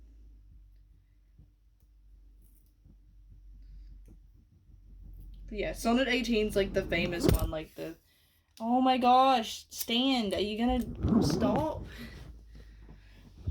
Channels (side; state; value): both; identical; correlation 1.00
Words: But yeah, Sonnet 18's like the famous one, like the oh my gosh, stand, are you gonna stop?